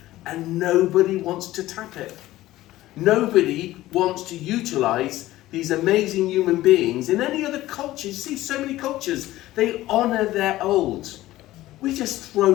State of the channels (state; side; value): quieter; right; 16.0 dB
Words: and nobody wants to tap it. Nobody wants to utilise these amazing human beings. In any other culture, you see so many cultures, they honour their old. We just